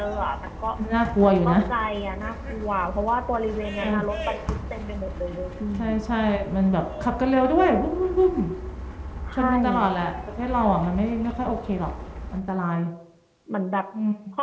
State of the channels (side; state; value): both; identical; correlation 1.00